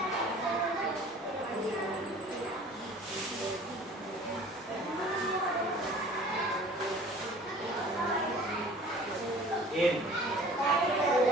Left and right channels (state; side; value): normal; both; correlation 0.47